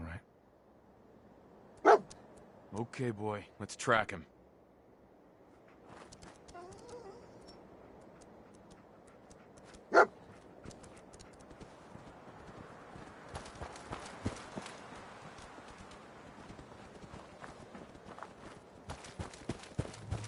right. Okay, boy. Let's track him.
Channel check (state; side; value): identical; both; correlation 1.00